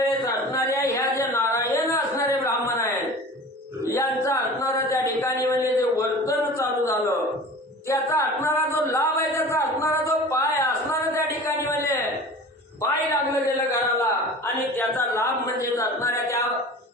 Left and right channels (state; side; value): normal; both; correlation 0.39